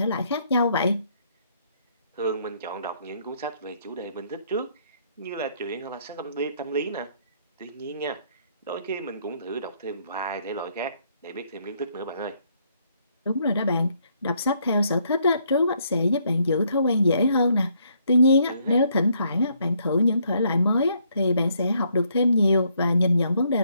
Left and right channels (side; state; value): both; inverted; correlation -0.70